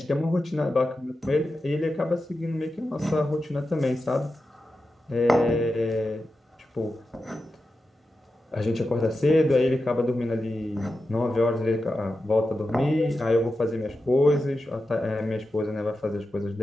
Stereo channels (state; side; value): normal; both; correlation 0.91